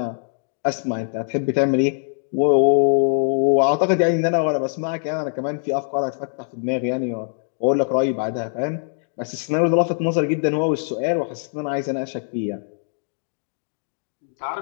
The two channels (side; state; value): right; silent; digital silence